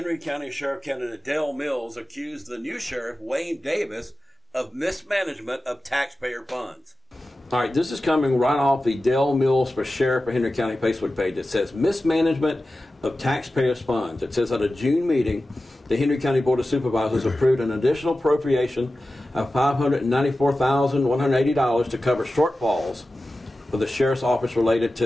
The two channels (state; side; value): normal; both; correlation 0.94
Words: County Sheriff candidate Dale Mills accused the new sheriff, Wayne Davis, of mismanagement of taxpayer funds. All right, this is coming right off the Dale Mills for Sheriff of Henry County Facebook page. It says mismanagement of taxpayers' funds. It says at a June meeting, the Henry County Board of Supervisors approved an additional appropriation of $594,180 to cover shortfalls for the sheriff's office related